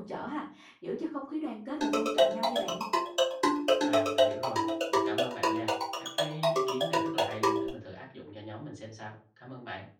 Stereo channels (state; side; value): identical; both; correlation 1.00